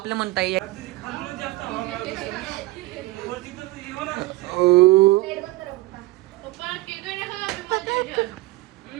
म्हणता ये पप्पा केक नाही खाणार.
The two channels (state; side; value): quieter; left; 19.6 dB